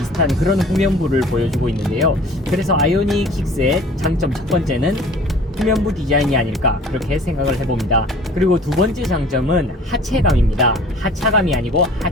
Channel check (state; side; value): normal; both; correlation 0.48